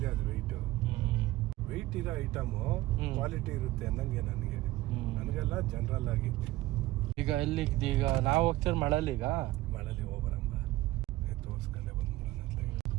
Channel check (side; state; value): left; quieter; 17.4 dB